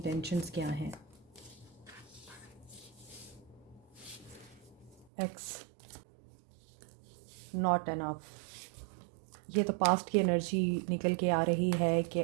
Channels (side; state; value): left; drops out; at 5.1 s